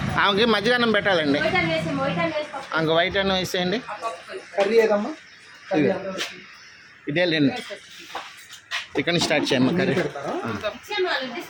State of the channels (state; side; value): identical; both; correlation 1.00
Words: ఆమెకి మజ్జిగన్నం పెట్టాలండి. ఇంక వైట్ అన్నం వేసేయండి. కర్రీ ఏదమ్మా? ఇదే లేండి. చికెన్ స్టార్ట్ చేయమ్మా. కర్రీ